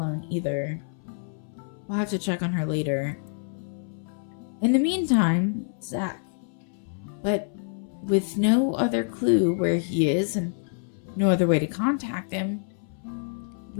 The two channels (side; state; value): right; silent; 60 dB below the other